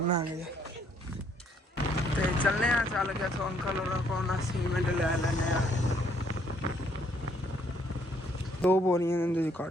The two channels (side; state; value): both; normal; correlation 0.67